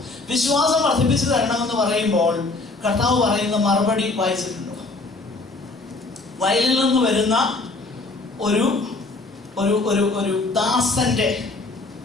വിശ്വാസം വർദ്ധിപ്പിച്ചു തരണമെന്ന് പറയുമ്പോൾ കർത്താവ് പറയുന്ന മറുപടി വായിച്ചിട്ടുണ്ടോ? വയലിൽ നിന്ന് വരുന്ന ഒരു ഒരു ഒരു ഒരു ദാസന്റെ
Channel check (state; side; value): quieter; right; 3.4 dB